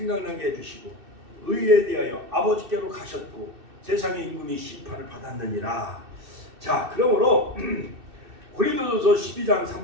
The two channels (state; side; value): late; left; 2.6 ms